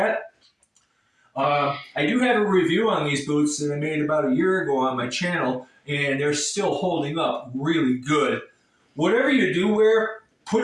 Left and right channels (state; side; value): identical; both; correlation 1.00